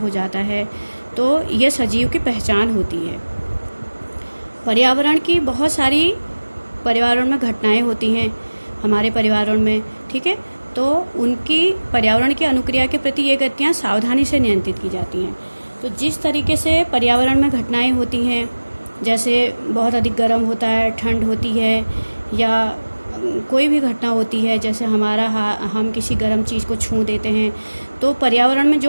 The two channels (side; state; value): both; inverted; correlation -1.00